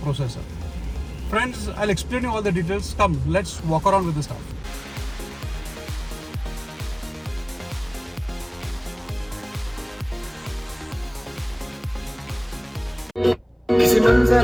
Friends, I'll explain you all the details. Come, let's walk around with the stuff. किसी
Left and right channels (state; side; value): identical; both; correlation 1.00